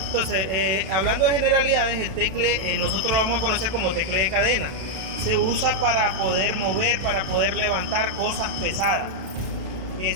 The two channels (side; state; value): left; late; 32 ms